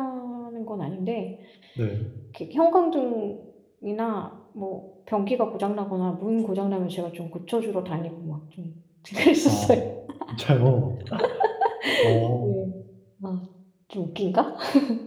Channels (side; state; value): both; identical; correlation 1.00